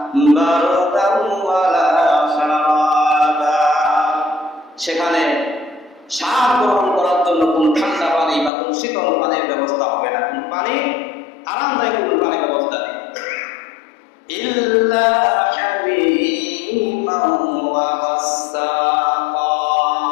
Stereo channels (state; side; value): drops out; right; at 8.5 s